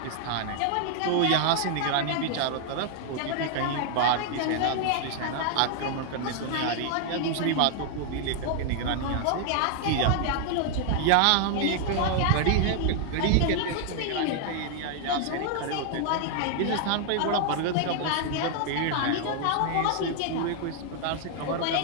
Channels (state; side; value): different; both; correlation 0.00